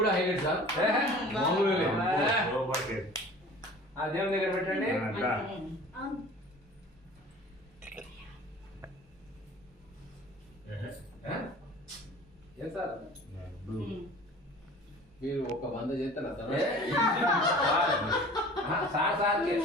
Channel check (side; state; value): both; normal; correlation 0.44